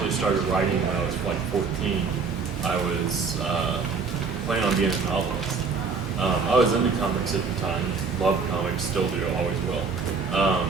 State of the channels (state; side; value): quieter; left; 5.0 dB